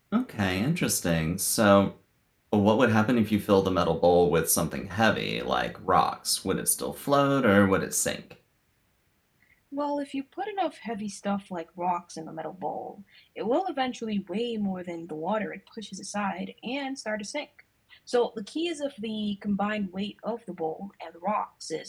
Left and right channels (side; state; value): both; identical; correlation 1.00